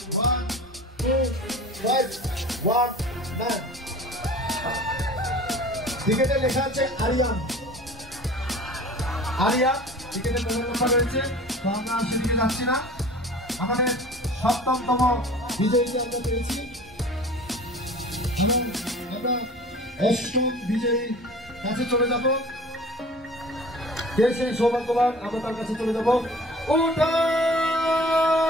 1 2 5 1 9। টিকেটে লেখা আছে আরিয়ান, আরিয়া। টিকেটের মোবাইল নাম্বার রয়েছে, তো আমরা সেদিকে যাচ্ছি না। আমাদের 7তম বিজয়ীকে আমরা পেয়েছি এবং আমরা 8ম বিজয়ী কাছে চলে যাব। কে সেই সৌভাগ্যবান, আমরা তার কাছে চলে যাব।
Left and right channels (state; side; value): normal; both; correlation 0.43